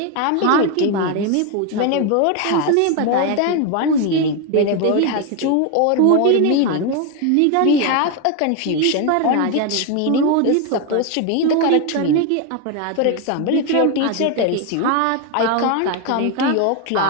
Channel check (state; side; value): different; both; correlation 0.01